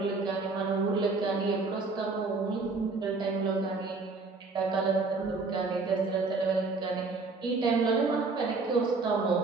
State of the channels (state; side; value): quieter; left; 3.9 dB